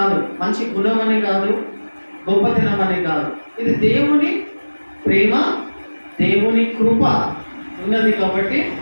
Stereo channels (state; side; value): inverted; both; correlation -1.00